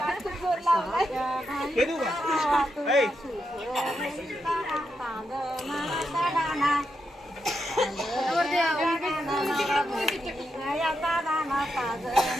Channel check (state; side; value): normal; both; correlation 0.84